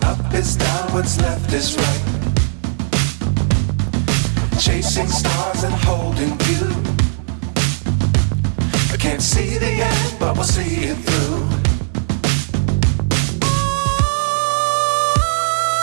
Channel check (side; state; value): left; silent; digital silence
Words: up is down, what's left is right. Chasing stars and holding you. I can't see the end, but we'll see it through.